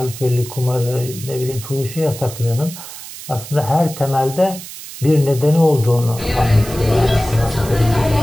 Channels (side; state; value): right; noise; hiss, 13 dB below the sound